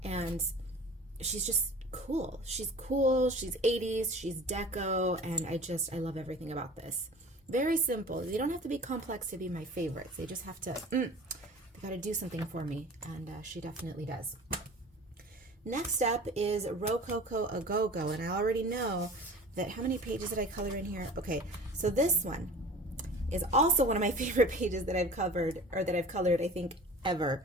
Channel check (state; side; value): normal; both; correlation 0.40